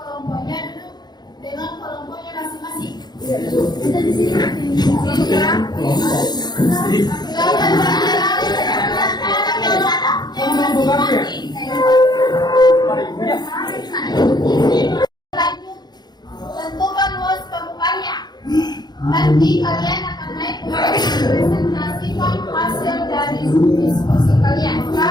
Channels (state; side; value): late; right; 0.20 ms